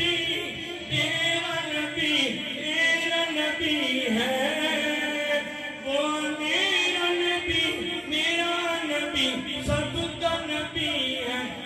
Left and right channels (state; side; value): identical; both; correlation 1.00